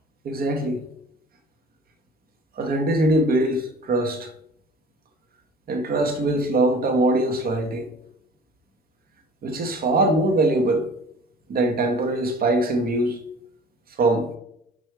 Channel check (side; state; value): both; normal; correlation 0.46